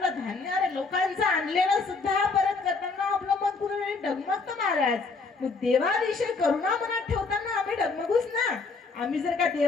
धान्य अरे लोकांचं आणलेलं सुद्धा परत करताना आपलं मन कुठेतरी डगमगतं महाराज. मग देवाविषयी करुणा मनात ठेवताना आम्ही डगमगूच ना. आम्ही जर का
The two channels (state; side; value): quieter; right; 4.3 dB